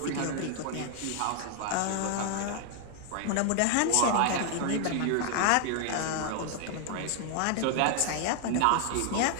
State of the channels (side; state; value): both; different; correlation 0.00